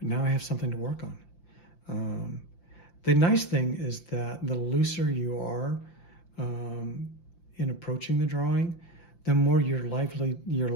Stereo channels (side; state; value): right; late; 5.8 ms